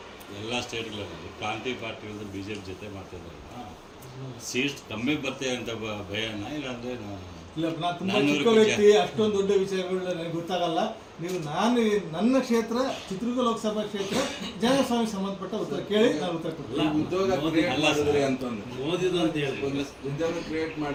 ಎಲ್ಲ ಸ್ಟೇಟ್ಗಳಲ್ಲಿ ಪ್ರಾಂತೀಯ ಪಾರ್ಟಿಗಳು ಬಿಜೆಪಿ ಜೊತೆ ಮಾಡ್ತಿದ್ದಾರೆ. ಸೀಟ್ಸ್ ಕಮ್ಮಿ ಬರ್ತೇವೆ ಅಂತ ಭಯನ? ಇಲ್ಲಾಂದ್ರೆ ಇಲ್ಲ, ನಾನು ತುಂಬ ಚಿಕ್ಕ ವ್ಯಕ್ತಿ, ಅಷ್ಟೊಂದು ದೊಡ್ಡ ವಿಷಯಗಳು ನನಗೆ ಗೊತ್ತಾಗಲ್ಲ. ನೀವು ನನ್ನ ಕ್ಷೇತ್ರ ಚಿತ್ರದುರ್ಗ ಲೋಕಸಭಾ ಕ್ಷೇತ್ರ ಜನಸ್ವಾಮಿ ಸಂಬಂಧಪಟ್ಟ ಉತ್ತರ ಕೇಳಿ ನಾನು ಉತ್ತರ ಕೊಡ್ತೀನಿ. ಉದ್ಯೋಗ ಕ್ರಿಯೇಟ್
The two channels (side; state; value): both; identical; correlation 1.00